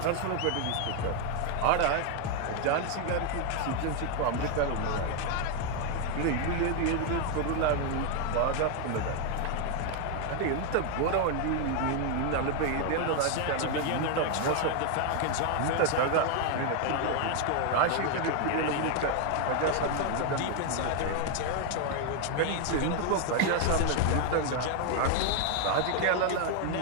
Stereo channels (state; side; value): different; both; correlation 0.01